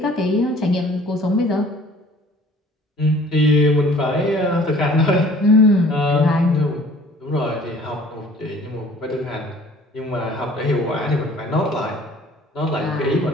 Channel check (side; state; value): both; normal; correlation 0.52